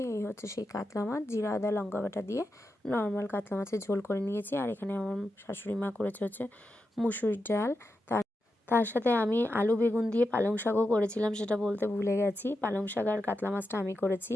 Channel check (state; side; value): normal; both; correlation 0.88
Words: এই হচ্ছে সেই কাতলা মাছ, জিরা আদা লঙ্কা বাটা দিয়ে নর্মাল কাতলা মাছের ঝোল করে নিয়েছি। আর এখানে আমার শাশুড়ি মা করেছে হচ্ছে মুসুরির ডাল। তার সাথে আমি আলু বেগুন দিয়ে পালং শাকও করেছিলাম, সেটা বলতে ভুলে গেছি। পালং শাক আর কাতলা মাছটা আমি করেছি,